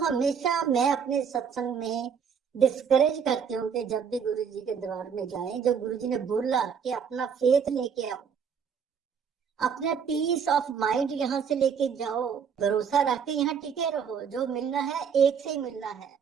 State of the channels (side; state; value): left; quieter; 6.9 dB